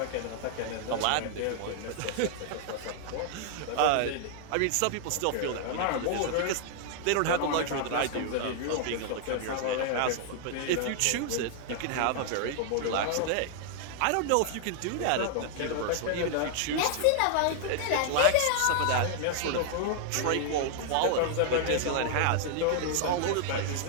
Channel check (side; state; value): both; different; correlation 0.00